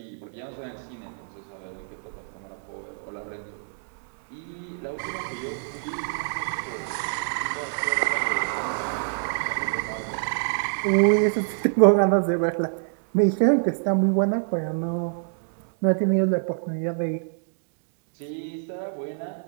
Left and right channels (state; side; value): silent; left; digital silence